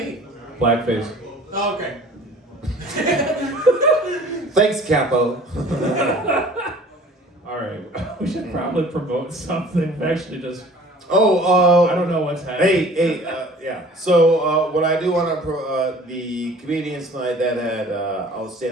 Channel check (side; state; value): both; normal; correlation 0.48